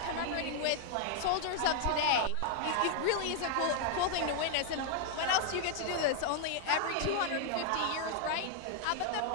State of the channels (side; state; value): both; different; correlation 0.00